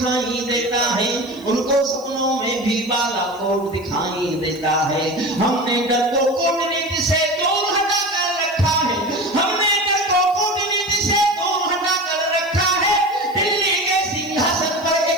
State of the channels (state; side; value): noise; left; hiss, 25 dB below the sound